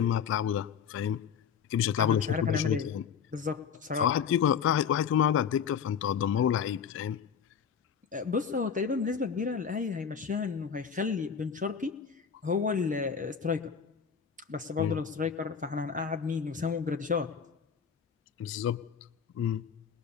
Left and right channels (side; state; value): right; quieter; 7.1 dB